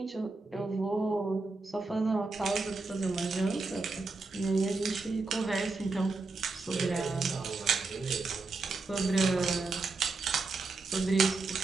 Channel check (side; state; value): left; quieter; 3.7 dB